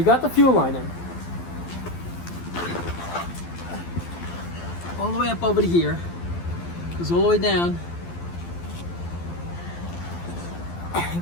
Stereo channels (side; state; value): right; late; 12 ms